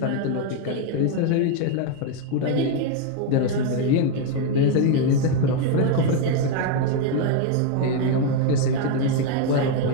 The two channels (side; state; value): both; different; correlation 0.01